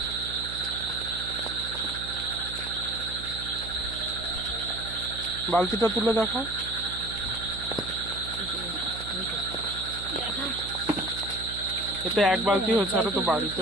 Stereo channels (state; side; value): noise; right; hum, 11 dB below the sound